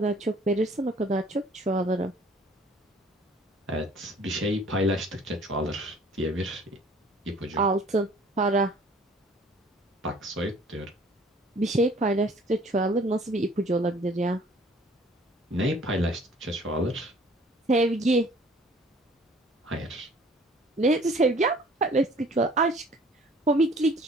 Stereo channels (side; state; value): both; normal; correlation 0.54